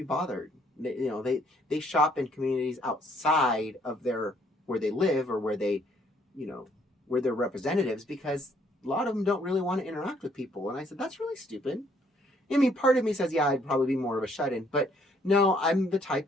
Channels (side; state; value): both; normal; correlation 0.66